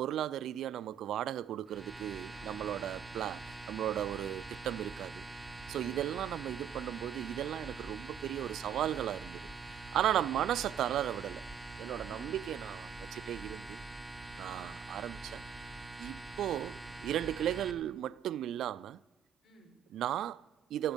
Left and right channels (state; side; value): quieter; left; 9.5 dB